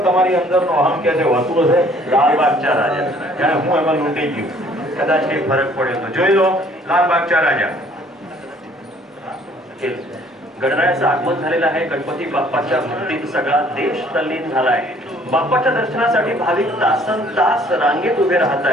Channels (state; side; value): normal; both; correlation 0.58